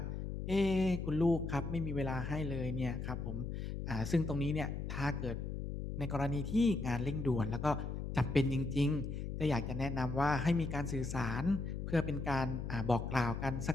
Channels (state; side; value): noise; left; hum, 4 dB below the sound